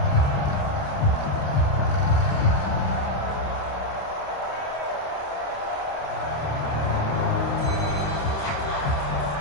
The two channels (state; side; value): late; right; 28 ms